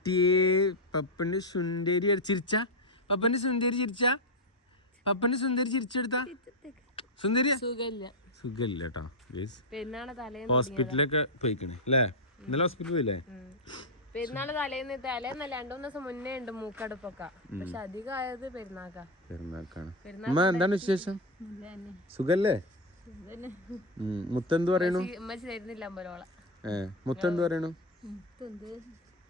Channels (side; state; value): both; normal; correlation 0.05